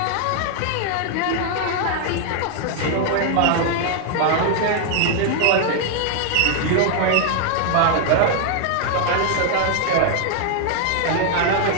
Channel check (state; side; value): different; both; correlation 0.00